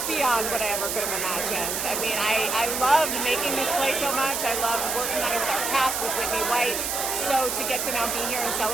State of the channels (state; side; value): noise; right; hiss, 1 dB below the sound